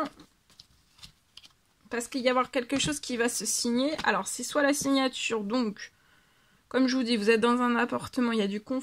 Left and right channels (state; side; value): identical; both; correlation 1.00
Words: Parce qu'il va y avoir quelque chose qui va se signer. Alors, c'est soit la signature, donc, comme je vous dis, vous êtes dans un appartement, il y a du